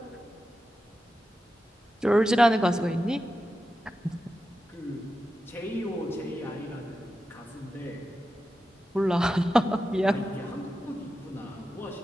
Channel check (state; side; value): normal; both; correlation 0.91